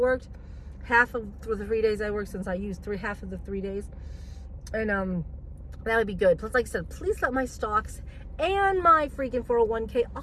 half of the 3 days I worked, since I used half of the 3 days, and that would be good. Plus, like I said, please let my stocks and my freaking 401k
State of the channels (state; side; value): identical; both; correlation 1.00